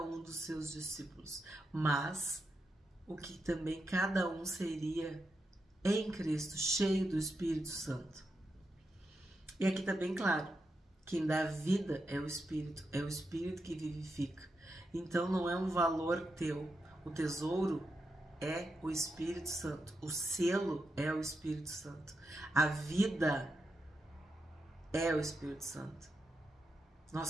um dos seus discípulos, mas o que também cada um seria em Cristo, cheio do Espírito Santo. E aqui está bem claro, quem dá vida é o Espírito que vivifica. Então não é um valor teu, o tesouro é o Espírito Santo, o selo é o Espírito Santo, a vida é o Espírito Santo. Nós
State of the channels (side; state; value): both; normal; correlation 0.85